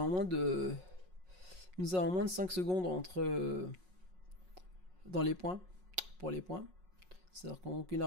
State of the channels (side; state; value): left; late; 5.5 ms